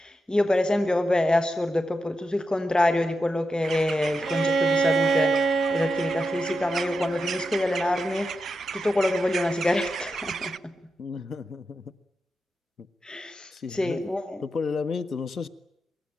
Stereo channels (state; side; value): normal; both; correlation 0.88